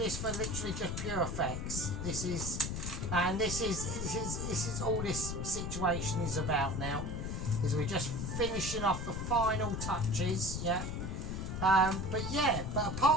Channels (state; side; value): noise; left; rumble, 4 dB below the sound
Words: for literally just pure effects. This is all this situation is about now. Is we're just finishing off the final touches, yeah. But